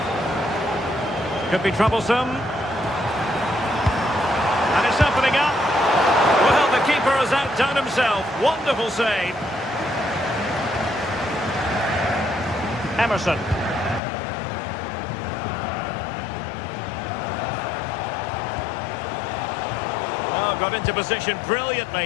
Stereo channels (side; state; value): right; drops out; at 14.0 s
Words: Could be troublesome. And it's opening up. Well, the keeper has outdone himself. Wonderful save. Emerson. Oh, got into position